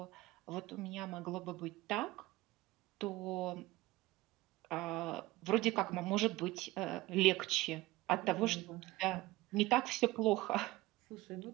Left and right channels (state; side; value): quieter; left; 19.1 dB